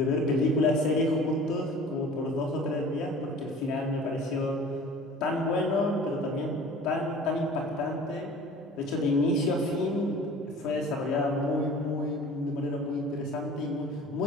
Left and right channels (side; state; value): both; normal; correlation 0.44